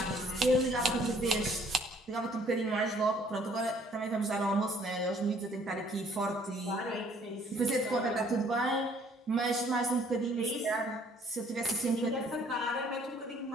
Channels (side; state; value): both; normal; correlation 0.60